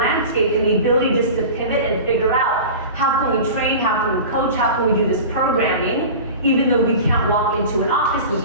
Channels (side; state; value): both; inverted; correlation -0.34